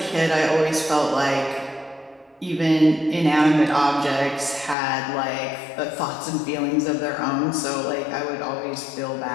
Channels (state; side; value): drops out; right; at 4.8 s